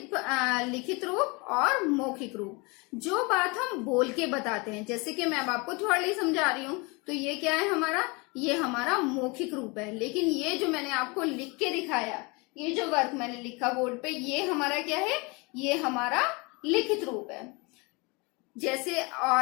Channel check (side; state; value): right; quieter; 28.0 dB